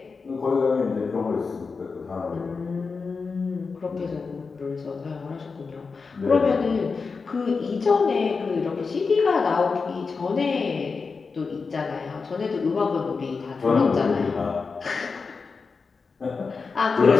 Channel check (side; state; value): right; quieter; 4.8 dB